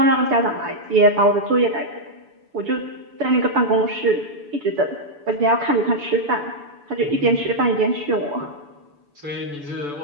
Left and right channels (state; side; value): late; left; 6.9 ms